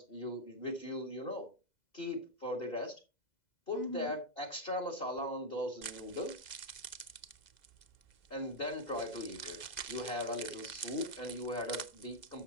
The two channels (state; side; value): late; right; 2.0 ms